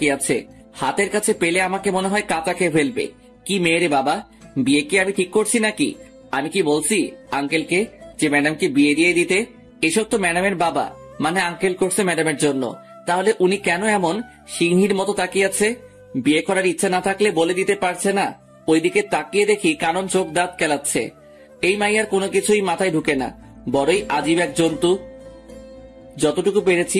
আছে। হাতের কাছে পেলে আমাকে মনে হয় কাঁচা খেয়ে ফেলবে। কি মেয়ে রে বাবা, বিয়ে কি আমি ঠিক করছি নাকি? আমি কি বলছি আঙ্কেলকে যে ম্যাডামকে বিয়ে দিয়ে দিতে? এসব তো ম্যাডামের বাবা মানে আঙ্কেল করছে ম্যাডামের জন্য। তাহলে উনি কেন এমন সিংহীর মতো তাকিয়ে আছে? বিয়ে করার ইচ্ছা না থাকলে বলে দিতে পারছে না? ওইদিকে তাকিয়ে দেখি কানন চোখ দাঁত কেলাচ্ছে। এই মাইয়ার কোনো কিছুই মাথায় ঢুকে না, বড়ই আজীব এক জন্তু। যতটুকু পেরেছি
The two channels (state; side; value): identical; both; correlation 1.00